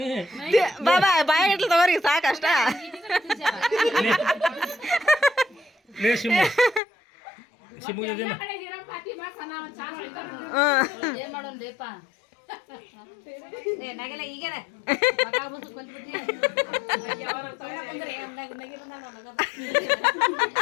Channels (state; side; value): drops out; right; at 6.8 s